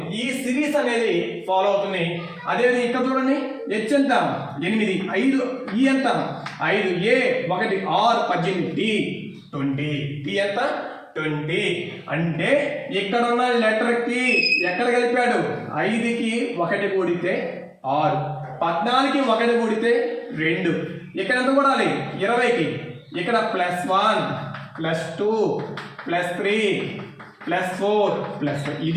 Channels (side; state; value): both; identical; correlation 1.00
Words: ఈ సిరీస్ అనేది ఫాలో అవుతుంది. అదేవిధంగా ఇక్కడ చూడండి, హెచ్ ఎంత? 8, 5, ఈ ఎంత? 5, A 1, R 18, D 20, T ఎంత? 20. అంటే ఇక్కడ ఉన్న లెటర్కి ఎక్కడ కలిపాడు? 5కి 1 కూడితే 6, 14కి 1 కూడితే 2. ఇక్కడ ఎంత కూడాలి? 20కి. ఇక్కడ +1 +2 +3 +4 +5.